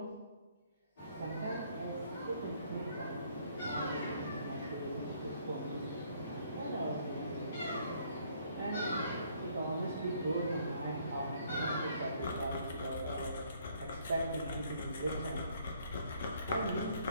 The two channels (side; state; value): both; inverted; correlation -0.65